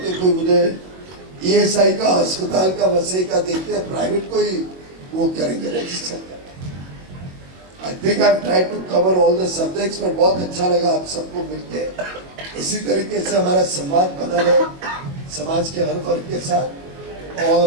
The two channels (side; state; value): left; late; 22 ms